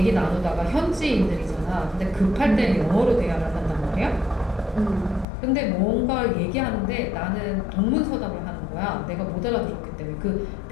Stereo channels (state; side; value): drops out; right; at 5.2 s